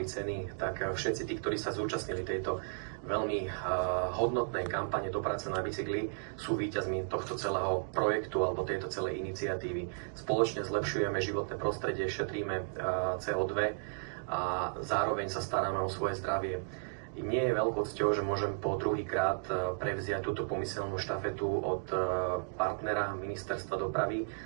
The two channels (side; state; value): left; silent; digital silence